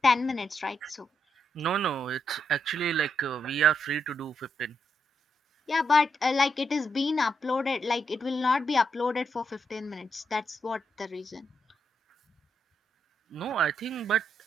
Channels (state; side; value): normal; both; correlation 0.80